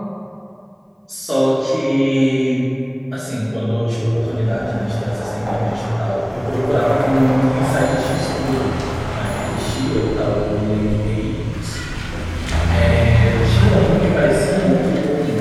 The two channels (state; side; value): identical; both; correlation 1.00